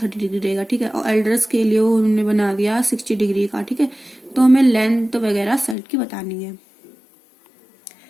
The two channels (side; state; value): right; drops out; at 5.8 s